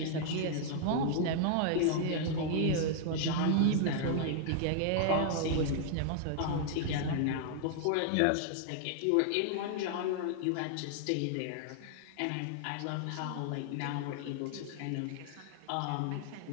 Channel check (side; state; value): both; different; correlation -0.01